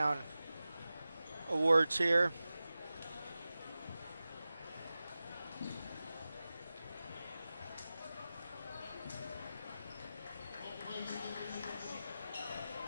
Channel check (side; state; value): both; inverted; correlation -0.95